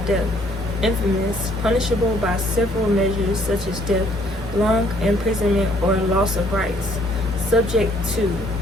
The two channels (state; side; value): normal; both; correlation 0.63